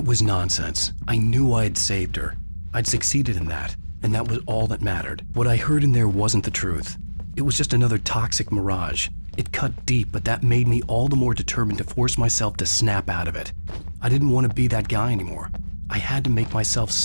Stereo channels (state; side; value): inverted; both; correlation -1.00